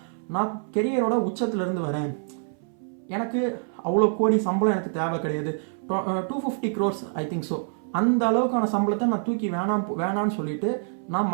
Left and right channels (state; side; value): silent; left; 59 dB below the other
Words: நான் கெரியரோட உச்சத்துலேருந்து வரேன், எனக்கு அவ்வளோ கோடி சம்பளம் எனக்கு தேவை கிடையாது, 250 crores ஐ திங்க். ஸோ அந்த அளவுக்கான சம்பளத்தை நான் தூக்கி வேணான்னு சொல்லிட்டு, நான்